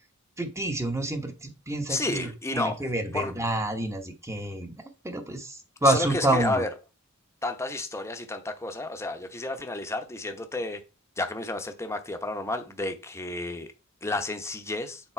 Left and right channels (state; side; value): normal; both; correlation 0.53